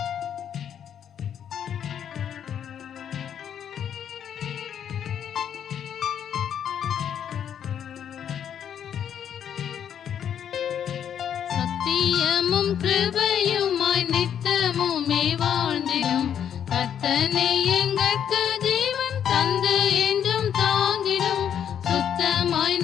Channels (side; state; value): right; quieter; 9.0 dB